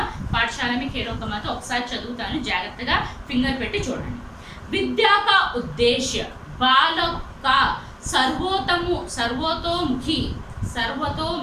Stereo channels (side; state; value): both; identical; correlation 1.00